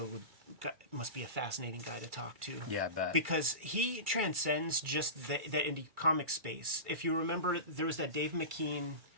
must be a fascinating guy to talk to. Yeah, I bet. Because he transcends just the indie comic space. If you remember, there was that Dave McKean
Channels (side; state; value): left; late; 2.3 ms